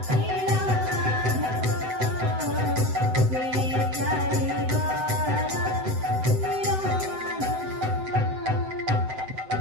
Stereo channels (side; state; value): left; late; 7.9 ms